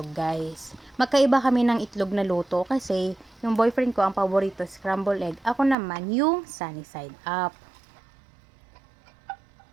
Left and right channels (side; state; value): left; drops out; at 5.8 s